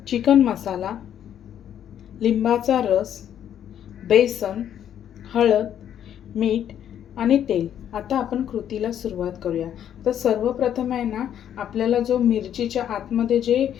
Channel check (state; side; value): quieter; right; 9.9 dB